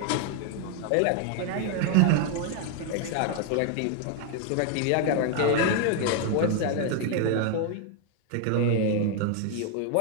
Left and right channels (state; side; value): different; both; correlation 0.00